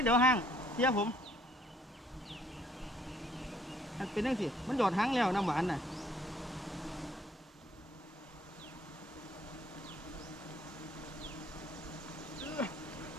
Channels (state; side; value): normal; both; correlation 0.62